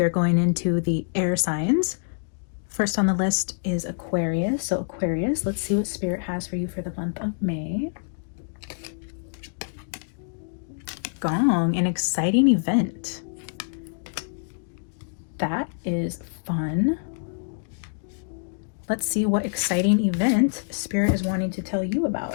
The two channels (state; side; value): silent; right; digital silence